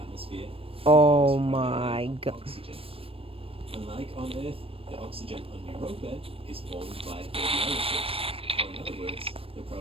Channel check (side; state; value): left; late; 0.27 ms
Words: Oh my god. Oxygen. Unlike on Earth, the oxygen on Europa is formed by radiolysis, or in other words, the